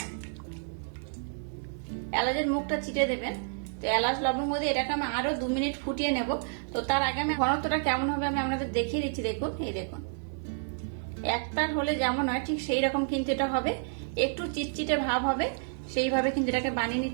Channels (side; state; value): left; silent; digital silence